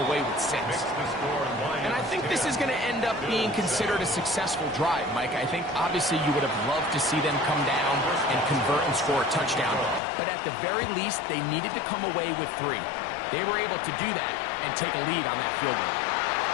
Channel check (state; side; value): drops out; right; at 10.0 s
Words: away with 6? And I think this is going to end up being considered a successful drive, Mike. I think obviously you would have loved to see them come down and convert and score a touchdown. But at the very least, they needed to come away with 3. They were able to do that and take a lead on that field goal.